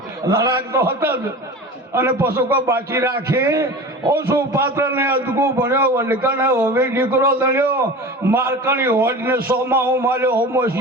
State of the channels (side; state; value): both; normal; correlation 0.34